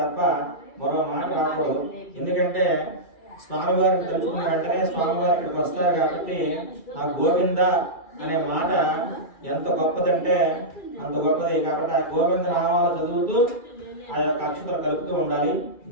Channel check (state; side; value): late; right; 2.4 ms